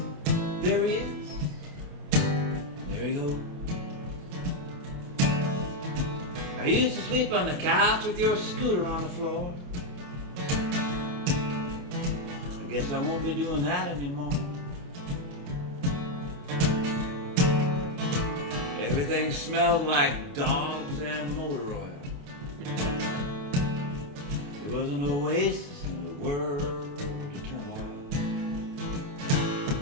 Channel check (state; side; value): late; left; 28 ms